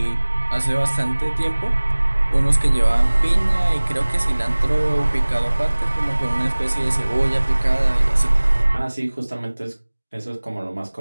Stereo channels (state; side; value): inverted; both; correlation -1.00